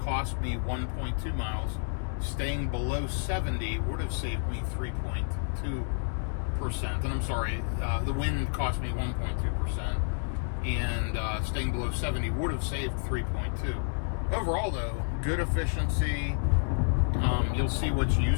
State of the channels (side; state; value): right; silent; digital silence